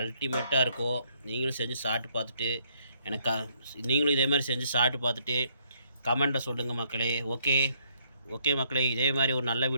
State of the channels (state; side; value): inverted; both; correlation -0.69